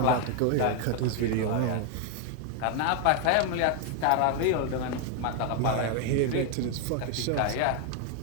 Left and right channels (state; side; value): different; both; correlation 0.00